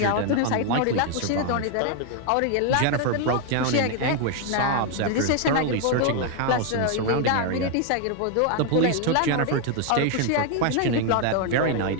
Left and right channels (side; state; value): both; different; correlation 0.01